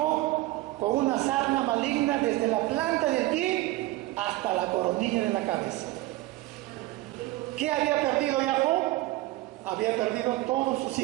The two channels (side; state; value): left; quieter; 18.3 dB